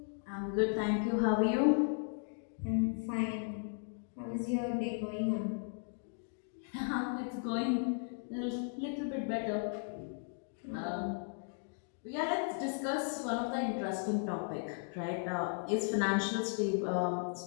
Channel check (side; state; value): right; silent; 54 dB below the other